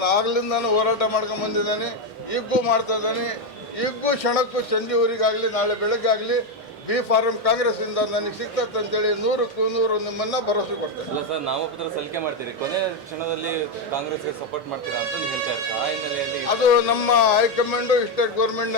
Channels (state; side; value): normal; both; correlation 0.06